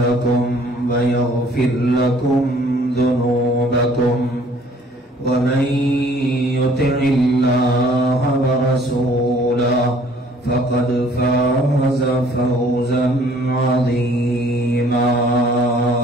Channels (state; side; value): normal; both; correlation 0.57